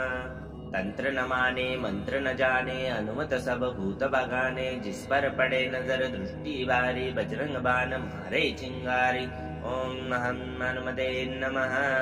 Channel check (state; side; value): identical; both; correlation 1.00